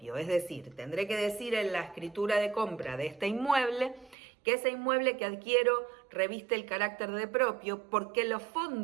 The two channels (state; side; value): drops out; left; at 4.2 s